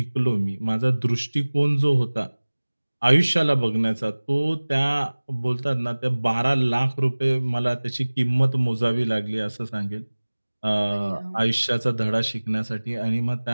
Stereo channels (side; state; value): both; inverted; correlation -1.00